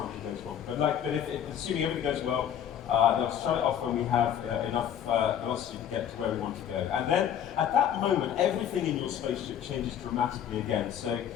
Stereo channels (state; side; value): quieter; right; 9.4 dB